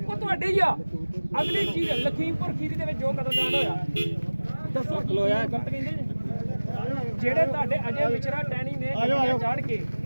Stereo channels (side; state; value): both; inverted; correlation -1.00